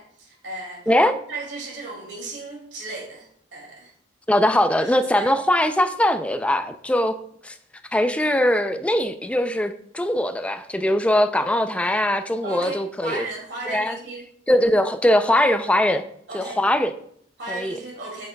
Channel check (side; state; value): both; normal; correlation 0.82